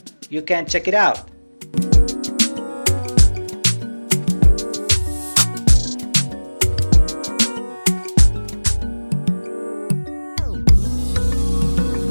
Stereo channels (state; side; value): inverted; both; correlation -1.00